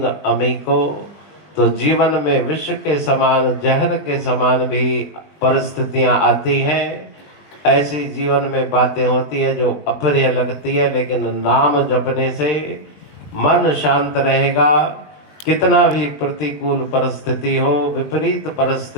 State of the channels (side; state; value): right; late; 20 ms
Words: अमीको। तो जीवन में विष के समान, जहर के समान भी परिस्थितियां आती हैं। ऐसी जीवन में बातें होती है जो अप्रिय लगती है, लेकिन नाम जपने से मन शांत रहेगा। कितना भी प्रतिकूल परिस्थिति हो, विपरीत